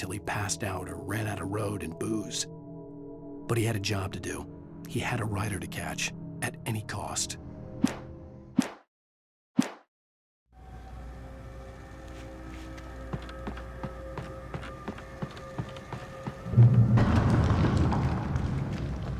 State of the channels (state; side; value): identical; both; correlation 1.00